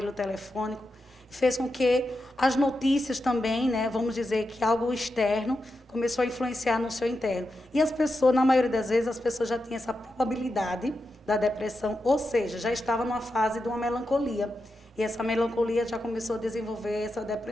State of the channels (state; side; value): normal; both; correlation 0.88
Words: telefônico, fez com que as notícias também, né, vamos dizer que algo externo começou a influenciar no seu interno. E as pessoas, na maioria das vezes, as pessoas já tinham essa probabilidade da depressão, ou seja, já estava numa fase de uma melancolia. E essa melancolia já começou a desenvolver essa